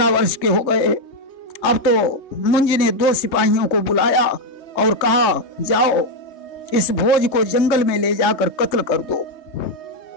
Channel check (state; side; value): late; right; 3.2 ms